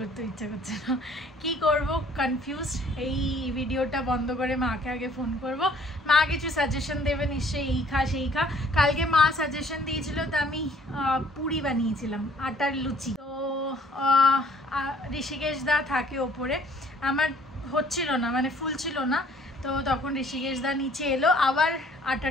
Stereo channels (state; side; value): normal; both; correlation 0.58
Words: ইচ্ছা করছে না। কি করব, কনফিউজড। এই ভিডিওটা বন্ধ করে মাকে আগে ফোন করব, মা কিছু সাজেশন দেবে নিশ্চয়ই, এই খা সেই খা। কালকে মা সাজেশন দিয়েছিল, তো আমি পুরি বানিয়েছিলাম, আটার লুচি। তো ঋষিকেশ দা থাকে ওপরে, আমার হচ্ছিল না, মানে ফুল ছিল না। তো তখন ঋষিকেশ দা নিচে এলো, আবার